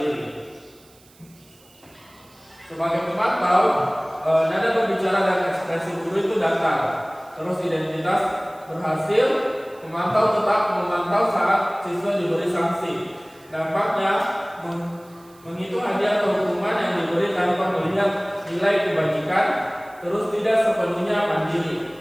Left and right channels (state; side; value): noise; right; hiss, 28 dB below the sound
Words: Sebagai pemantau, nada berbicara dan ekspresi guru itu datar. Terus identitas berhasil, pemantau tetap memantau saat siswa diberi sanksi. Dampaknya menghitung hadiah atau hukuman yang diberi tanpa melihat nilai kebajikan, terus tidak sepenuhnya mandiri.